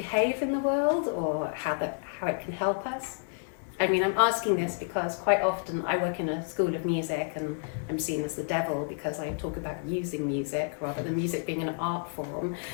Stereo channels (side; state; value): right; silent; 58 dB below the other